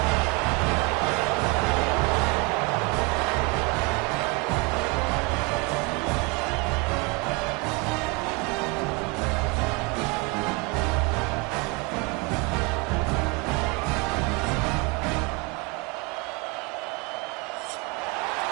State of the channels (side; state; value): left; quieter; 26.4 dB